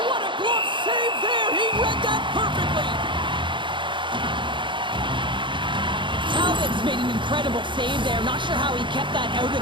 what a glove save there. He read that perfectly. Talbot's made an incredible save there. Not sure how he kept that out of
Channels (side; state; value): left; late; 0.23 ms